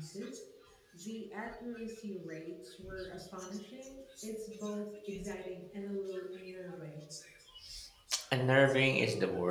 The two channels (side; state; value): both; identical; correlation 1.00